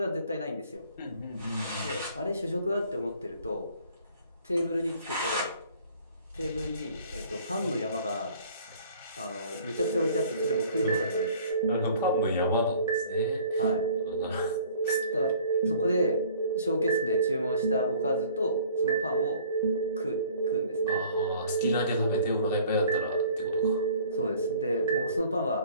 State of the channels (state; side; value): inverted; both; correlation -0.53